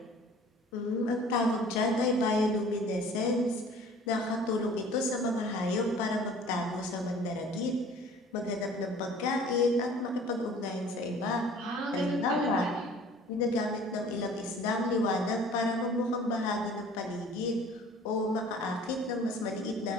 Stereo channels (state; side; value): normal; both; correlation 0.49